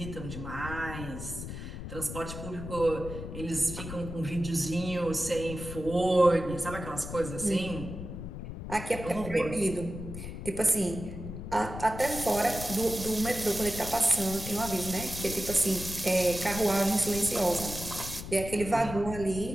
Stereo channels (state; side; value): noise; left; rumble, 9 dB below the sound